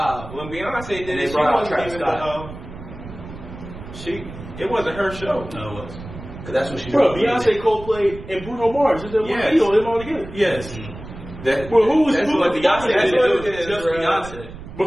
When Beyonce did And it, they she brought out wasn't Travis even it wasn't her show. No, it was. Because that's what she Bro, did. Beyonce, Coldplay, and Bruno Mars. Is that one Yes. video? Them all together. Yes. Well, who was That's what Beyonce that's did. what It was it is, just bro. Beyonce. But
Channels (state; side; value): noise; right; rumble, 13 dB below the sound